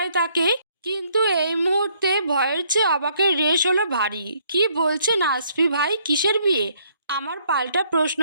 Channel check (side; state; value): both; inverted; correlation -0.67